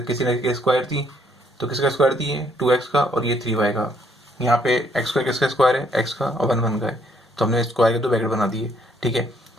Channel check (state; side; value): normal; both; correlation 0.68